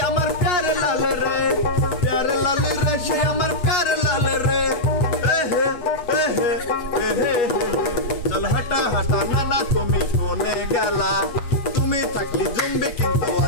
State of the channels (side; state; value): right; late; 8.4 ms